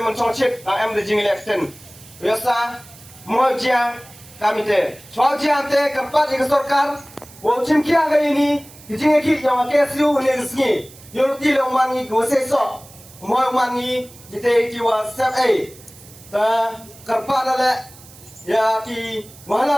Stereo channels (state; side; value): noise; right; hiss, 21 dB below the sound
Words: mencong chip, am the jing election. Biasa mau jia kami te. Soal jia te kerpat di sorkar, wo cim kia ke ini, jing ki yang KSU ni resmi. Yorti le mangi go sesok, mau mangi jite jiwa sep ta kerpat lale, ya ki